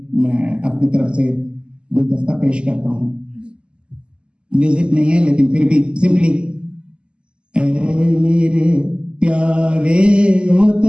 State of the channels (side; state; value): left; late; 0.051 ms